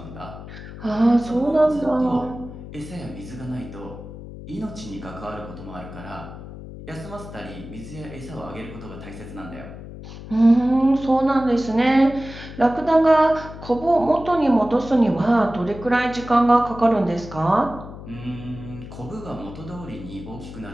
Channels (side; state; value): left; noise; hum, 13 dB below the sound